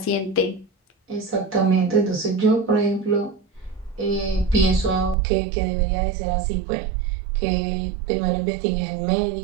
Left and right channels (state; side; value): drops out; left; at 5.2 s